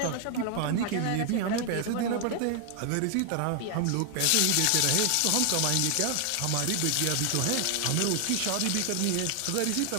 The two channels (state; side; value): different; both; correlation 0.00